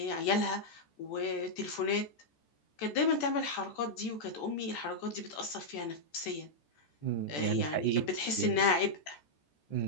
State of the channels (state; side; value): late; right; 14 ms